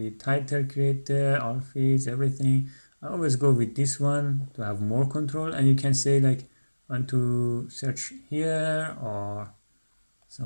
title creator, all feeds, everything. I always go with this one to have more control. And you can say like, I want to search here or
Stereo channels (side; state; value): both; inverted; correlation -1.00